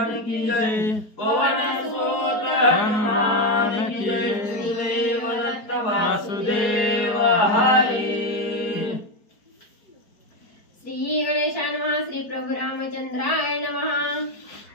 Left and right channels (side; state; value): right; late; 4.7 ms